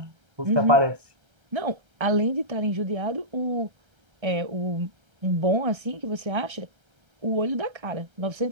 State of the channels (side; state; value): left; late; 1.3 ms